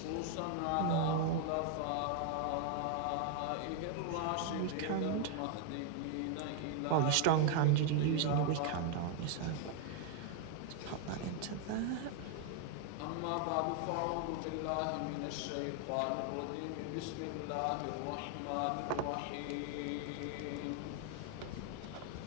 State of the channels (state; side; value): different; both; correlation 0.01